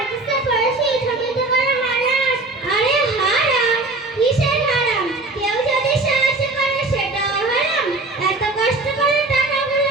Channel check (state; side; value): quieter; left; 3.1 dB